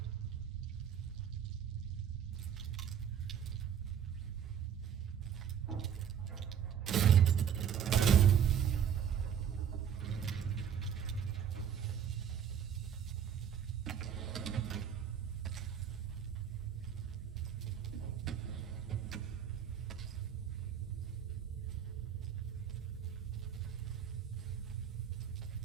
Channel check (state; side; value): quieter; left; 8.6 dB